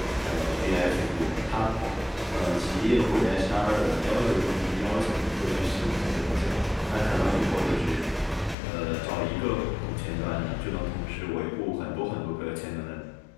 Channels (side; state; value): right; drops out; at 8.6 s